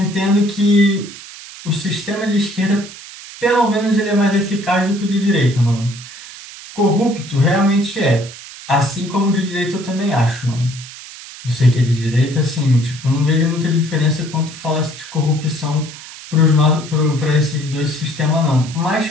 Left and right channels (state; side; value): noise; right; hiss, 15 dB below the sound